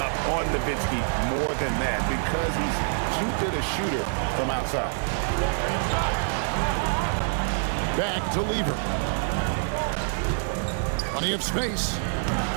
up on Nowitzki more than that because he's too good a shooter from outside. Back to Lever. Plenty of space.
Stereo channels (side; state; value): left; silent; 61 dB below the other